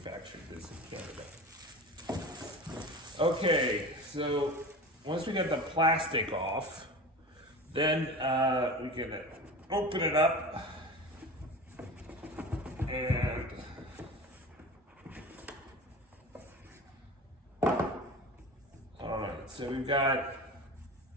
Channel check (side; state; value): both; normal; correlation 0.33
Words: this in Canada. Okay, so once we get the plastic off, then we can open it up and so we've got